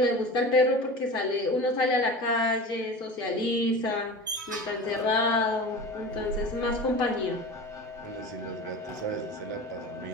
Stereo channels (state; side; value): normal; both; correlation 0.33